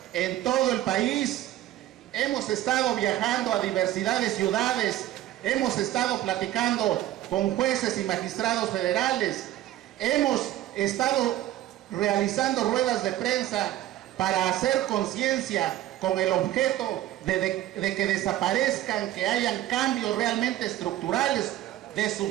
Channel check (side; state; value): left; quieter; 14.0 dB